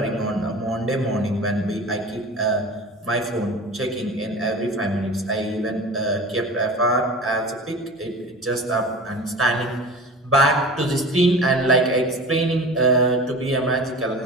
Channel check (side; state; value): both; normal; correlation 0.36